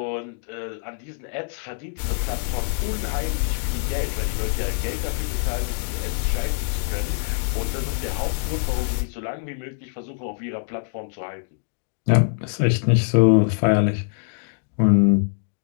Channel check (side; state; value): right; silent; digital silence